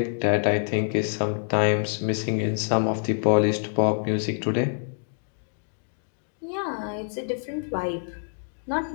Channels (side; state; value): right; silent; digital silence